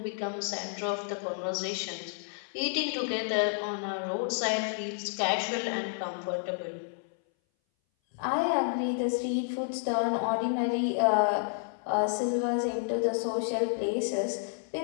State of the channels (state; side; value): silent; right; 57 dB below the other